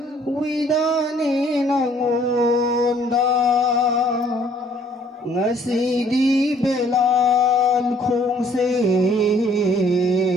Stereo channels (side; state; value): both; normal; correlation 0.60